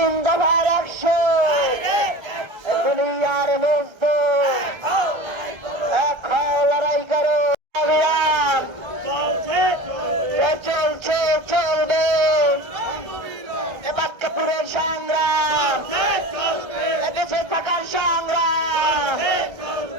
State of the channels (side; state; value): left; late; 1.3 ms